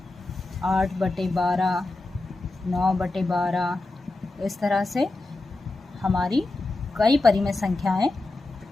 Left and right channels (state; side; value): quieter; right; 3.1 dB